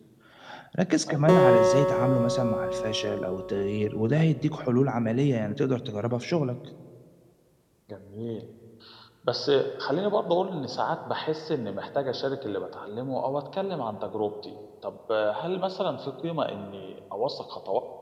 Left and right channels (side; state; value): both; identical; correlation 1.00